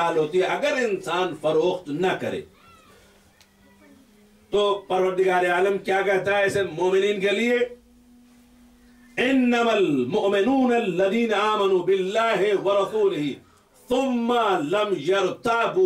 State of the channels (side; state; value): both; identical; correlation 1.00